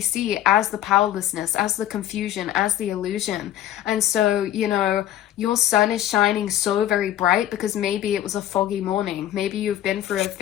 see as the powerlessness, as the confusion, as the illusion. And so, you know, your sun is shining so very bright because maybe it was a foggy morning. Maybe you've been through a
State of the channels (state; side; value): quieter; right; 12.0 dB